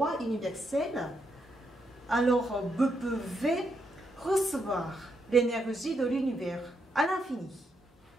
universelle, alors vous pouvez recevoir l'énergie de l'univers à l'infini.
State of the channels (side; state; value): both; normal; correlation 0.79